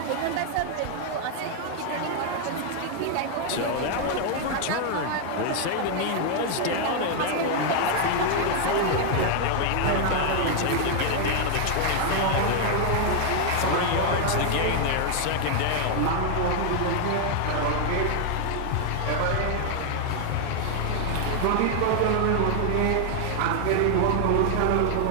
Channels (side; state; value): both; different; correlation 0.00